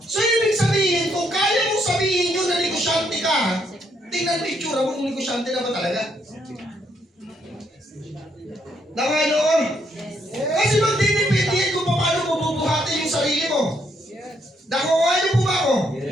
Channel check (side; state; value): both; normal; correlation 0.74